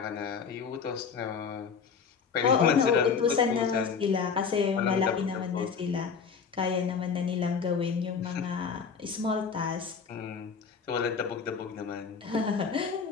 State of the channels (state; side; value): quieter; right; 6.0 dB